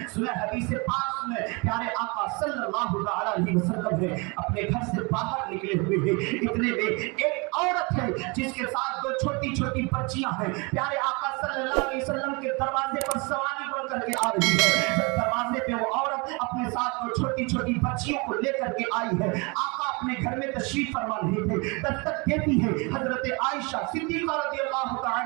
सुने हदीस पाक में प्यारे आका सल्लल्लाहु अलैहि वसल्लम है अपने घर से बाहर निकले हुए हैं, इतने में एक औरत है जिसके साथ 2 छोटी छोटी बच्चियां हैं। प्यारे आका सल्लल्लाहु अलैहि वसल्लम के दरवाजे पर सवारी बनकर के आ रही है। जब दरवाजे पे वो औरत अपने साथ 2 छोटी छोटी बच्चियों को लेकर के आई है, आका अपने घर में तशरीफ फरमा रहे थे, दस्तक देती है हजरत आयशा सिद्दीका रज़ियल्लाहु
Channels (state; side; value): quieter; left; 29.3 dB